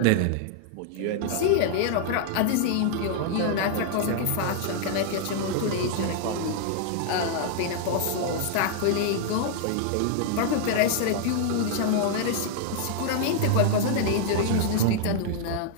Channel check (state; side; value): different; both; correlation -0.01